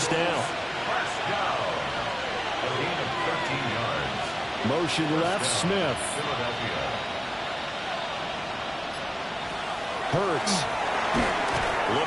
down. First down. A gain of 13 yards. Motion left, Smith. Philadelphia. Hurts.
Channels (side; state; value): both; identical; correlation 1.00